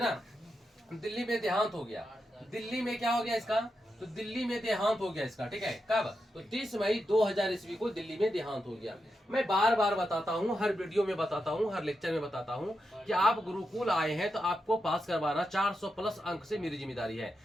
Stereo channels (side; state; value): both; normal; correlation 0.87